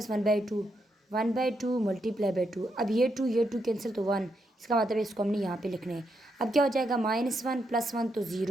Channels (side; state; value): both; normal; correlation 0.81